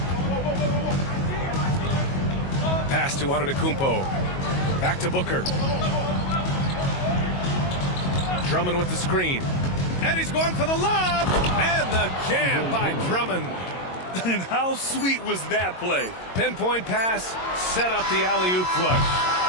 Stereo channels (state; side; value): late; right; 22 ms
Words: Pass to Antetokounmpo. Back to Booker. Drummond with the screen. And he's going for the lob. And the jam by Drummond. And how sweet was that play? Pinpoint pass, set up the alley-oop flush.